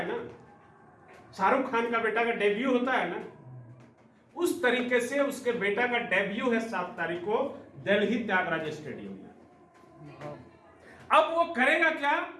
ना, शाहरुख खान का बेटा का डेब्यू होता है ना, उस तरीके से उसके बेटा का डेब्यू है 7 तारीख को दिल्ली त्यागराज स्टेडियम में। अब वो करेगा क्या?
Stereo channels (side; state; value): both; identical; correlation 1.00